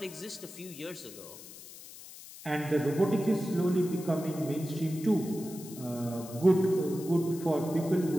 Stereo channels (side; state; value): left; noise; hiss, 16 dB below the sound